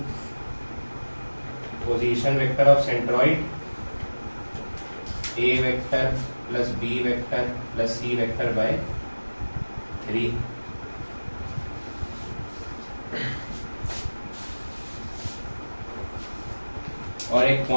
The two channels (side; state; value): both; inverted; correlation -1.00